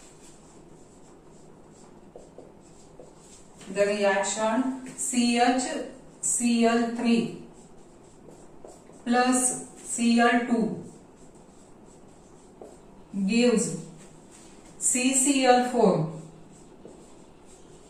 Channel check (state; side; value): identical; both; correlation 1.00